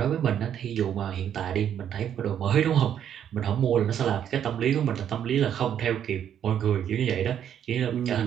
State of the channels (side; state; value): left; quieter; 9.4 dB